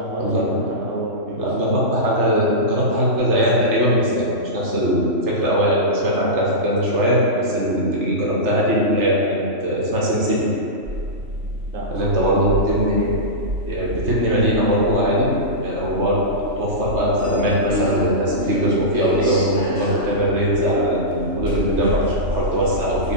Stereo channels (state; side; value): late; left; 3.1 ms